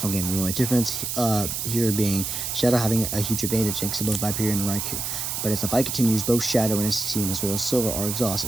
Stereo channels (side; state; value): right; noise; hiss, 3 dB below the sound